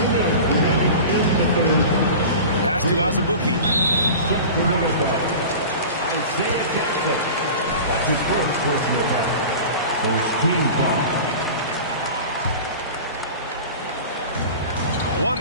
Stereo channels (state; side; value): inverted; both; correlation -0.35